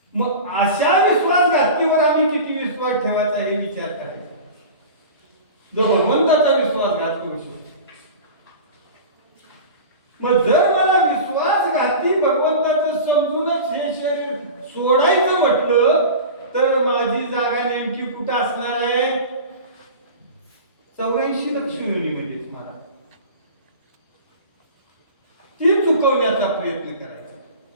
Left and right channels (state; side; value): inverted; both; correlation -0.34